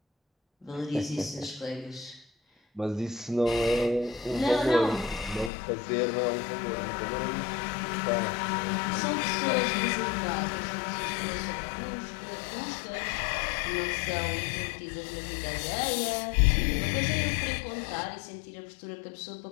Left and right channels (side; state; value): right; drops out; at 5.5 s